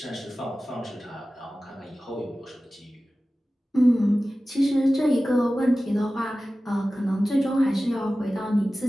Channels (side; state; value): both; normal; correlation 0.96